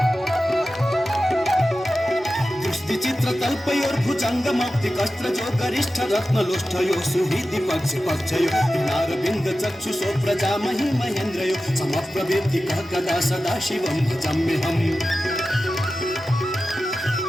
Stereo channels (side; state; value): both; normal; correlation 0.94